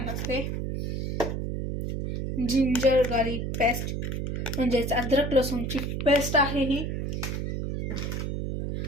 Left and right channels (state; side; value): noise; right; hum, 2 dB below the sound